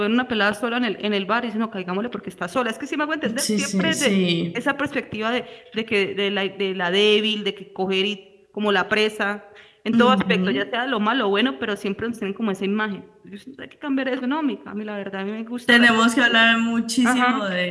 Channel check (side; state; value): both; identical; correlation 1.00